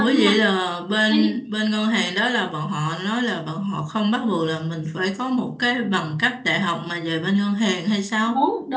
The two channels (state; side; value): identical; both; correlation 1.00